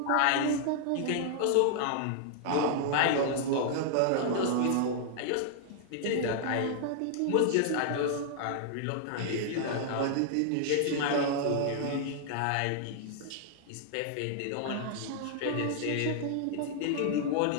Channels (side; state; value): both; different; correlation -0.01